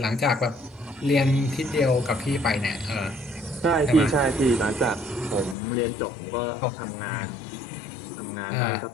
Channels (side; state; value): right; drops out; at 5.6 s